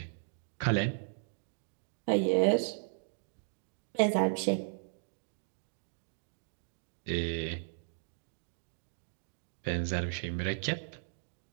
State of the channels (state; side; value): silent; left; digital silence